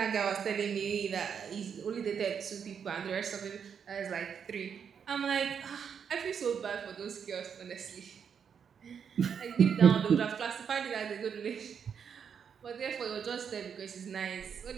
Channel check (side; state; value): left; quieter; 7.2 dB